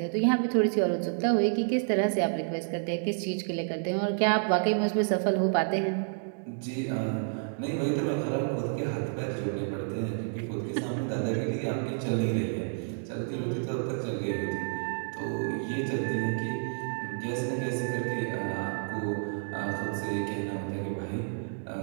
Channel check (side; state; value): left; silent; digital silence